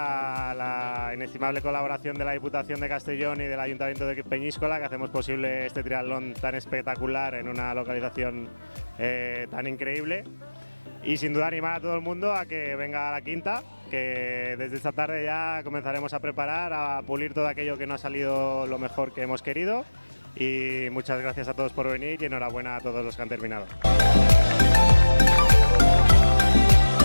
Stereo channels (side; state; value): both; inverted; correlation -1.00